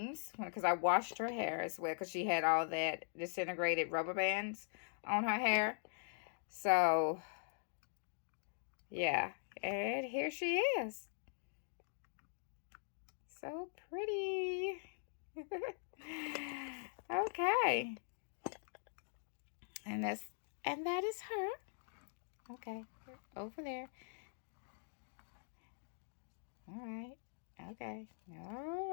because I washed her hair as well because she had all that disintegrated rubber bands on her hair. So, yeah. And here she is. So pretty. Okay. And that is her. Okay. Over there. All right. Okay. All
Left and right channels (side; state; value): right; silent; digital silence